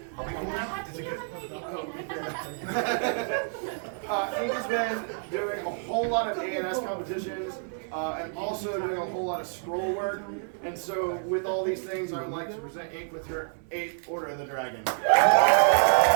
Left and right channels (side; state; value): left; silent; 59 dB below the other